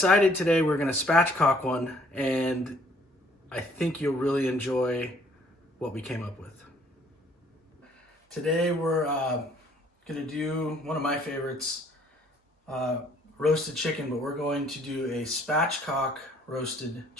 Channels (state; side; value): normal; both; correlation 0.61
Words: today we're gonna spatchcock one, and I think you'll really enjoy what we came up with. Today we're gonna do one of my favorites, roasted chicken, but we're going to do a spatchcock roasted